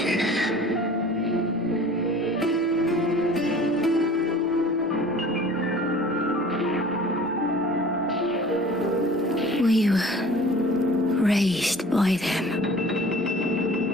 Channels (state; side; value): normal; both; correlation 0.45